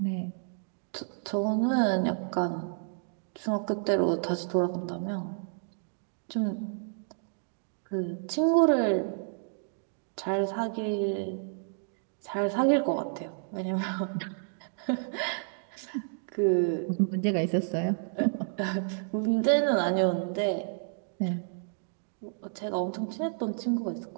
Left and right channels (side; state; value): left; silent; digital silence